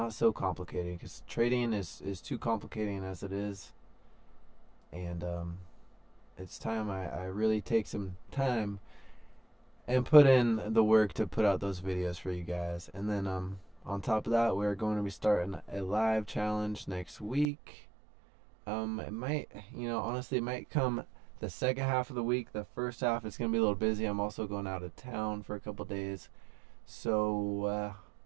so complicated, because trading is too complicating as it is. And it's time I really take some time and put in the work to put out those videos for you guys. And then on top of that, we're going to be starting a live challenge next week. It might, you know, honestly, it might come the second half of the week. The first half it's gonna be a little busy. I'm also going out of town for a couple days, so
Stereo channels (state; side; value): drops out; left; at 17.4 s